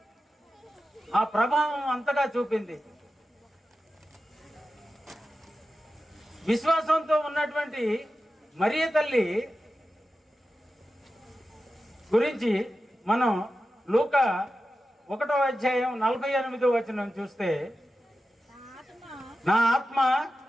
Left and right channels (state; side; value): normal; both; correlation 0.92